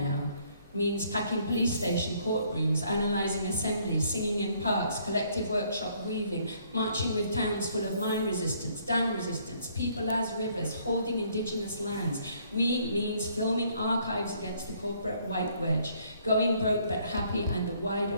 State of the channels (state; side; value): inverted; both; correlation -0.65